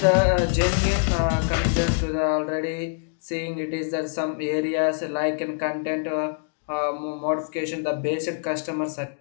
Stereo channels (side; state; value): right; silent; digital silence